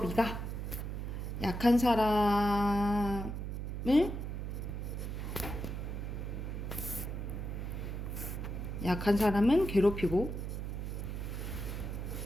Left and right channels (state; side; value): noise; right; hum, 4 dB below the sound